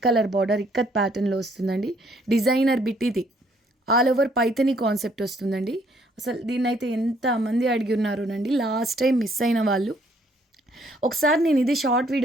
కలర్ బార్డర్ ఇక్కత్ ప్యాటర్న్లో వస్తుందండి. డిజైనర్ బిట్ ఇది. ఆల్ ఓవర్ పైథనీ కాన్సెప్ట్ వస్తుందండి. అసలు దీన్నైతే ఎంతమంది అడిగి ఉన్నారోనండి. లాస్ట్ టైం మిస్ అయిన వాళ్ళు, ఒకసారి నేను ఇది షార్ట్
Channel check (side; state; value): both; normal; correlation 0.66